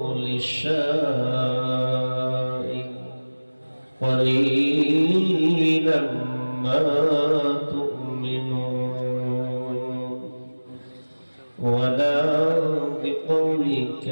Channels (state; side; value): inverted; both; correlation -1.00